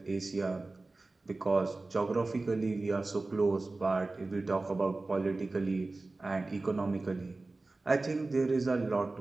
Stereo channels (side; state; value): left; quieter; 3.3 dB